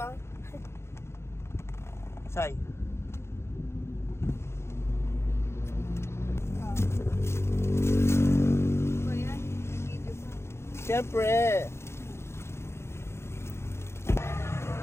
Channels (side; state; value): right; late; 0.13 ms